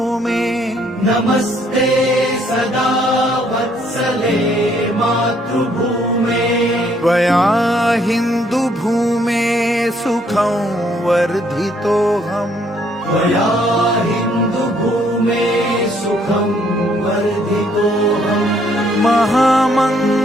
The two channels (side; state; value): both; normal; correlation 0.66